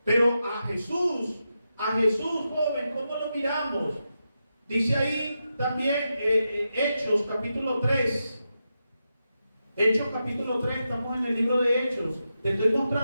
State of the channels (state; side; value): inverted; both; correlation -0.88